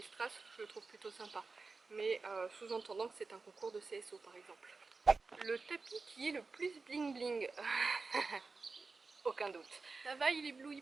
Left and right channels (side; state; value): left; quieter; 4.1 dB